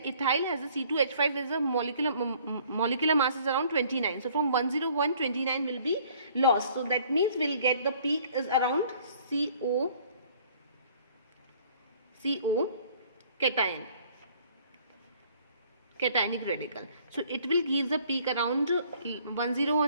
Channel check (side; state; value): both; inverted; correlation -0.57